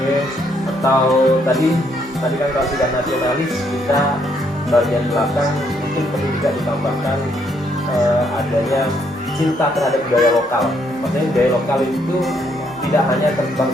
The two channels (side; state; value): both; normal; correlation 0.72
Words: atau tadi kan kalau sudah nasionalis kita bagian belakang mungkin perlu juga ditambahkan adanya cinta terhadap budaya lokal. Maksudnya budaya lokal itu tidak hanya